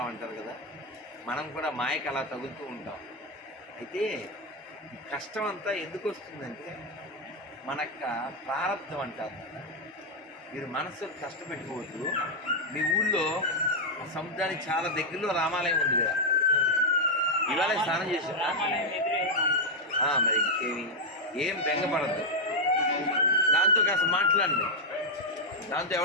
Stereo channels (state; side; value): normal; both; correlation -0.01